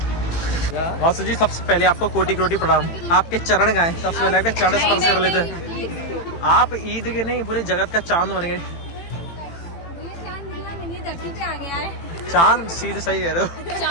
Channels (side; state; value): right; late; 18 ms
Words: वासु जी सबसे पहले आपको कोटि कोटि प्रणाम। आपके चरण गाए, सबसे पहले आपके चरण स्पर्श कर लेते हैं। आप ईद के नहीं पूरे जगत का चांद बन गए। धरती पे आ गया है। चांद सीधे सही कह रहे हो।